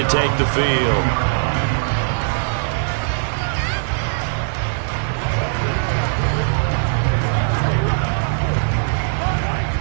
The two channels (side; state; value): left; silent; digital silence